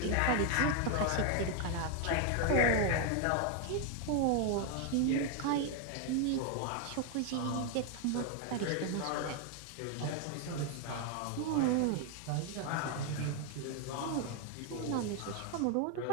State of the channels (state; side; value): different; both; correlation 0.01